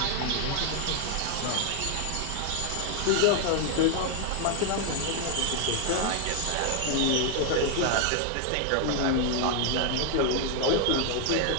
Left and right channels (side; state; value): both; different; correlation 0.00